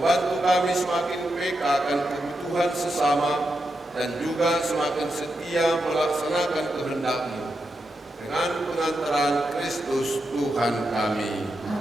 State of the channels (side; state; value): both; normal; correlation 0.86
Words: kami semakin peka akan kebutuhan sesama dan juga semakin setia melaksanakan kehendak-Mu. Dengan pengantaran Kristus Tuhan kami.